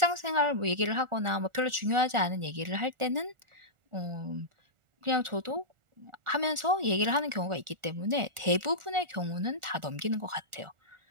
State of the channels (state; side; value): late; left; 1.4 ms